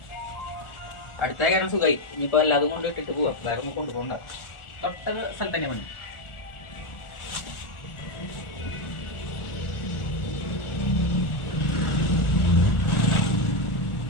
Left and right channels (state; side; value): late; right; 1.4 ms